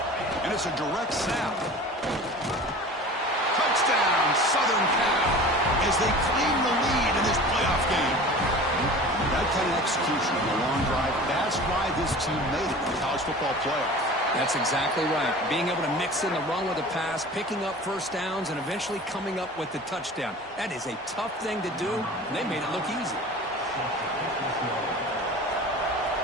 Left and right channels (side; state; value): both; normal; correlation 0.39